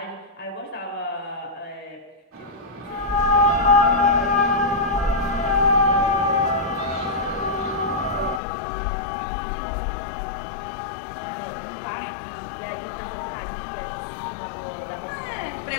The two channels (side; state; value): right; drops out; at 8.4 s